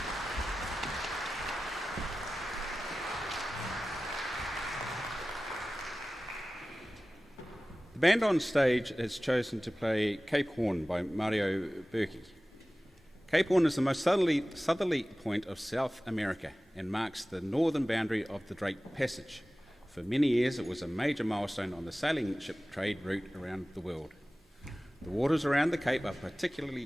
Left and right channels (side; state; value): both; normal; correlation 0.96